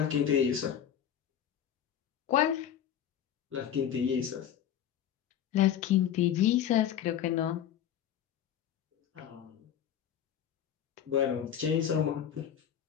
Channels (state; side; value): quieter; right; 9.7 dB